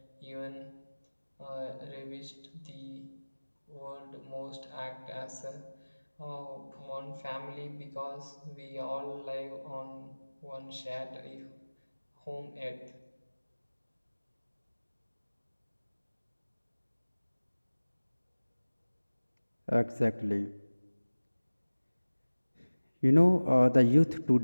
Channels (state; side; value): inverted; both; correlation -1.00